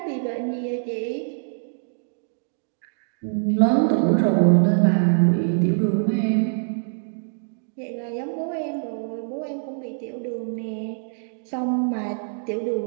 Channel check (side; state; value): left; silent; digital silence